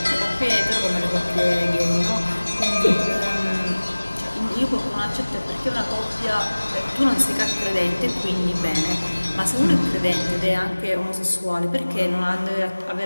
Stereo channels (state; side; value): inverted; both; correlation -1.00